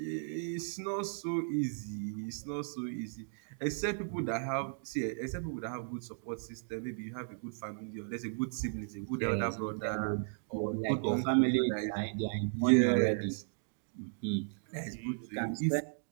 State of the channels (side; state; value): left; silent; digital silence